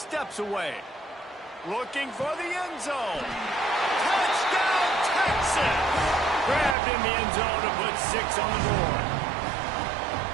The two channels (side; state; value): left; drops out; at 6.8 s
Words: away. Looking for the end zone. Touchdown, Texas! Grabbed in the end zone to put 6 on the board.